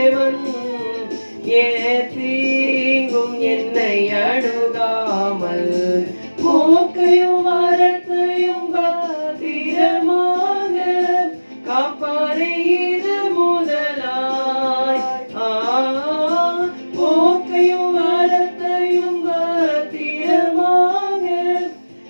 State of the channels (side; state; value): both; inverted; correlation -1.00